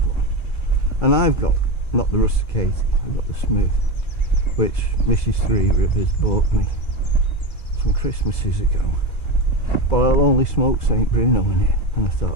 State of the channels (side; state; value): right; late; 2.4 ms